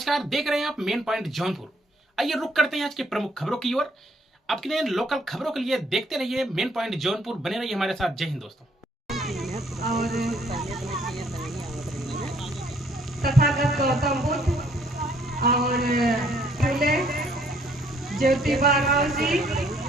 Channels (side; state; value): both; normal; correlation 0.65